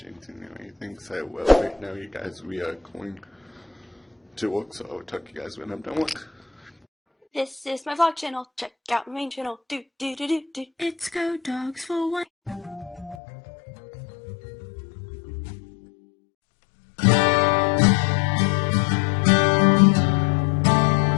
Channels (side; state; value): right; drops out; at 13.2 s